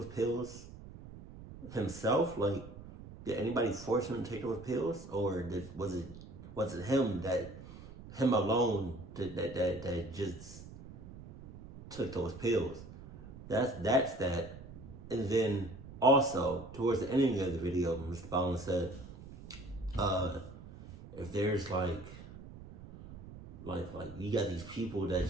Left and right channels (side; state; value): right; noise; rumble, 15 dB below the sound